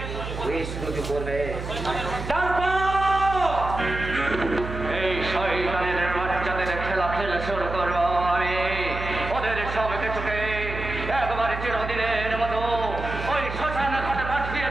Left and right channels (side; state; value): right; noise; hum, 7 dB below the sound